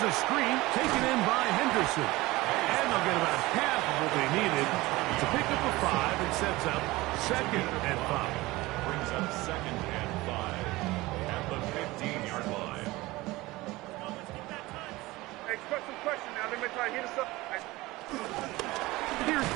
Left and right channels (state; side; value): quieter; left; 20.0 dB